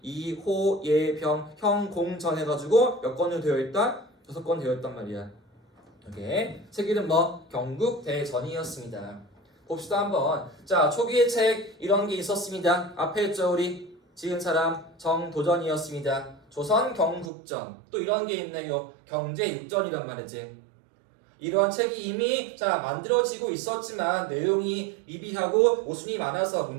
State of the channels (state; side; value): drops out; left; at 17.3 s